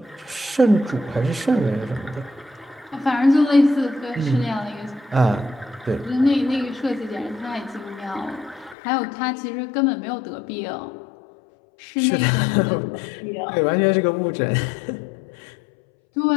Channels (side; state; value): right; drops out; at 8.8 s